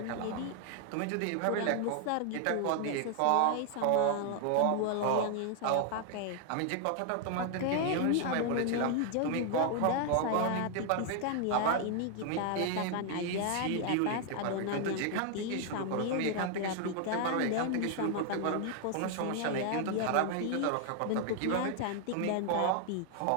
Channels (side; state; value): both; different; correlation 0.00